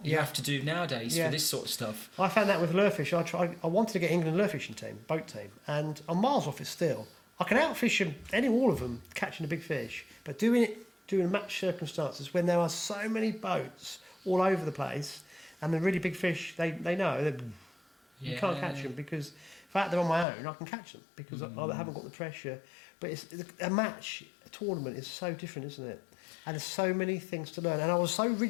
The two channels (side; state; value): right; drops out; at 20.2 s